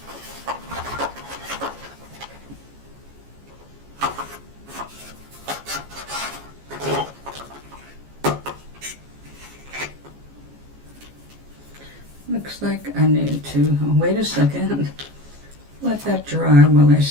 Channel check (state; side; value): late; left; 14 ms